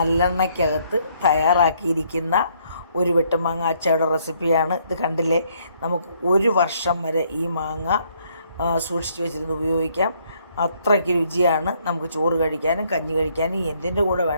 തയ്യാറാക്കിയിരിക്കുന്ന ഒരു വെട്ടുമാങ്ങ അച്ചാറുടെ റെസിപ്പിയാണ്. ഇത് കണ്ടില്ലേ, നമുക്ക് 1 വർഷം വരെ ഈ മാങ്ങ സൂക്ഷിച്ച് വെച്ചിരുന്ന് ഉപയോഗിക്കാം. അത്രയ്ക്ക് രുചിയാണ്. നമുക്ക് ചോറ് കഴിക്കാനും കഞ്ഞി കഴിക്കാനും എന്തിൻ്റെ കൂടെ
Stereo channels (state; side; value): inverted; both; correlation -0.68